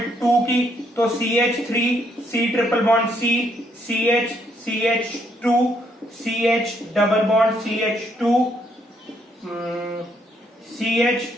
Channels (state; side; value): normal; both; correlation 0.72